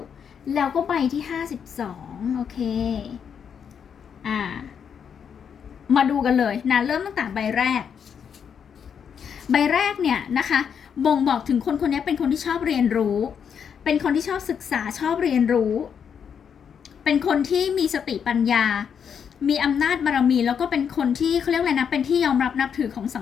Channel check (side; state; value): right; quieter; 7.4 dB